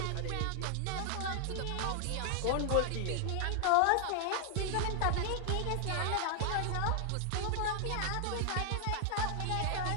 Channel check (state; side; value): different; both; correlation 0.00